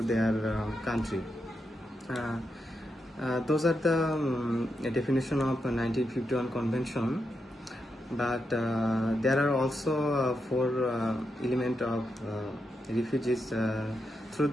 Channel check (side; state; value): both; normal; correlation 0.85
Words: their country. Those are the definition of 1951 convention, but there are also four element of refugees. Through